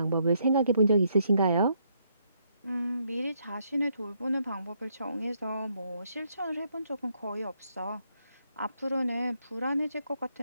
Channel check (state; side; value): inverted; both; correlation -0.74